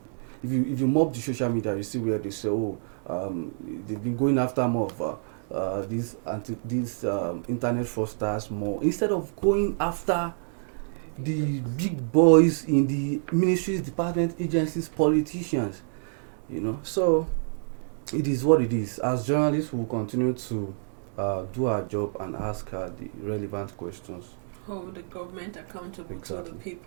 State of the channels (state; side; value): silent; left; digital silence